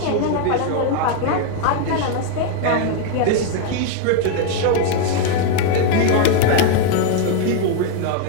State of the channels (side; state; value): both; different; correlation 0.00